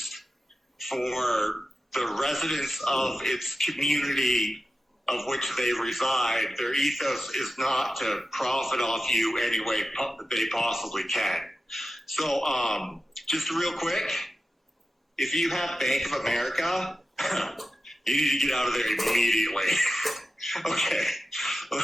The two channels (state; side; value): normal; both; correlation 0.92